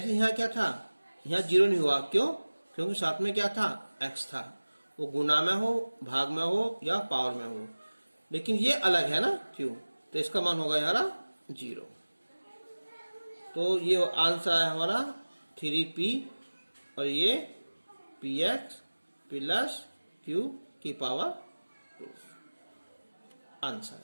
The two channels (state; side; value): inverted; both; correlation -1.00